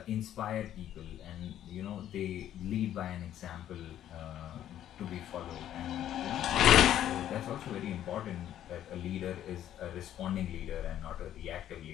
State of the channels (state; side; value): quieter; right; 11.4 dB